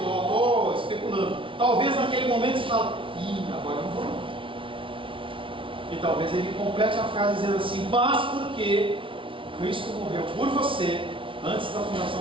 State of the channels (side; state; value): left; late; 0.25 ms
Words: especulando, talvez naquele momento você fala, agora eu não vou não. E talvez ele complete a frase dizendo assim, mas porque Cristo morreu por você antes da fundação